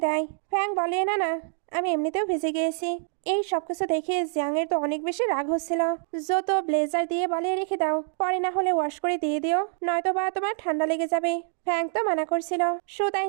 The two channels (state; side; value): silent; left; 61 dB below the other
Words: দেয়। ফ্যাং বলে না না আমি এমনিতেও ভিজে গিয়েছি। এই সবকিছু দেখে জিয়াং এর তো অনেক বেশি রাগ হচ্ছিল। জো তো ব্লেজার দিয়ে বলে রেখে দাও, পরে না হলে ওয়াশ করে দিয়ে দিও, নয়তো বা তোমার ঠান্ডা লেগে যাবে। ফ্যাং তো মানা করছিল। শো তাই